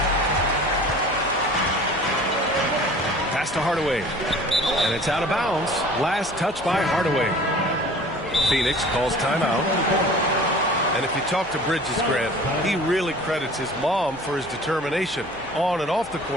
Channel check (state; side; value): noise; right; hum, 23 dB below the sound